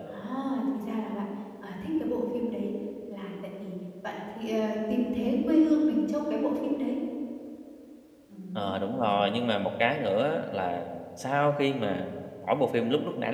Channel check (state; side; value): identical; both; correlation 1.00